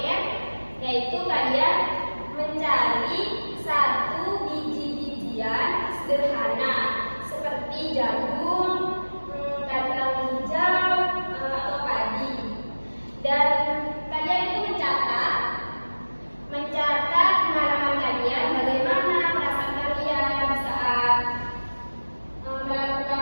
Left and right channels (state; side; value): inverted; both; correlation -1.00